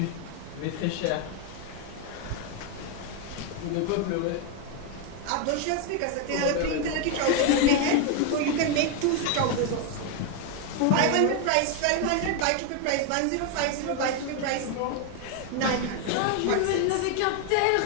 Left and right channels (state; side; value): different; both; correlation 0.01